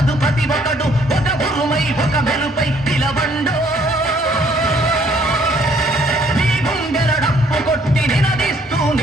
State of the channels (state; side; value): normal; both; correlation 0.64